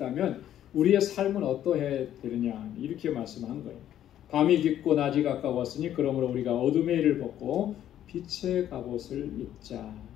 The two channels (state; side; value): quieter; right; 11.3 dB